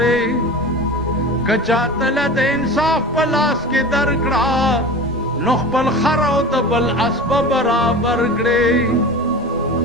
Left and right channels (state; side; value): noise; left; rumble, 20 dB below the sound